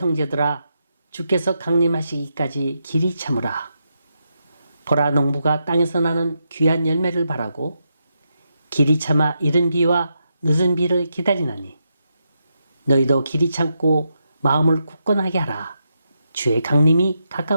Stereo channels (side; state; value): both; inverted; correlation -0.84